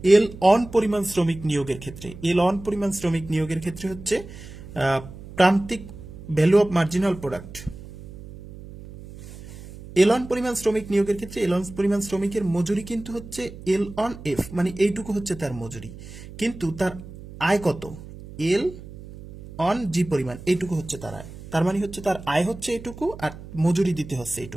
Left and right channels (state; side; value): noise; right; hum, 15 dB below the sound